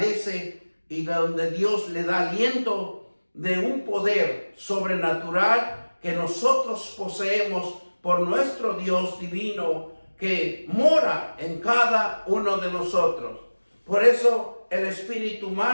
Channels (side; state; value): both; inverted; correlation -1.00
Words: y donde Dios le da aliento de un poder sobrenatural que nosotros poseemos por nuestro Dios divino que mora en cada uno de nosotros. Por eso el espíritu